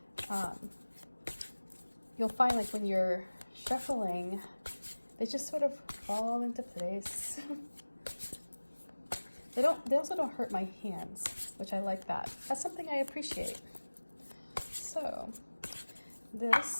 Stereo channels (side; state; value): both; inverted; correlation -1.00